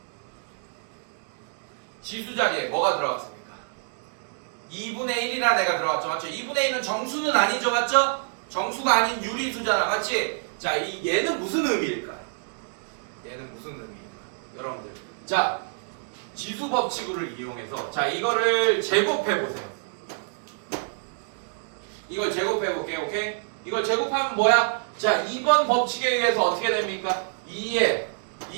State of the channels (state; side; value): silent; left; digital silence